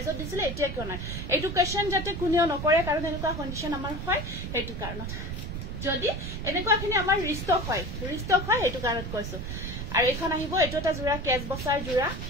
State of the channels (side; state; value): right; noise; rumble, 6 dB below the sound